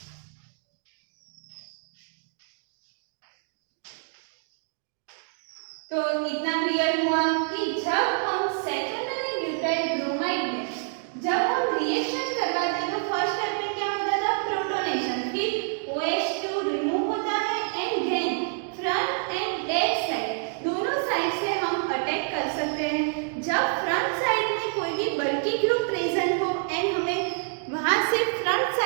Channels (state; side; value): silent; left; 60 dB below the other